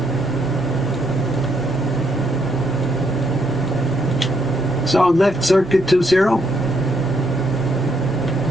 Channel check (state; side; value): normal; both; correlation 0.73